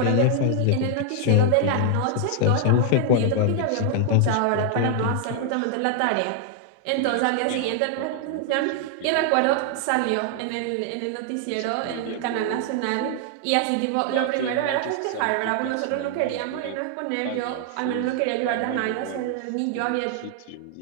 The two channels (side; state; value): both; different; correlation 0.00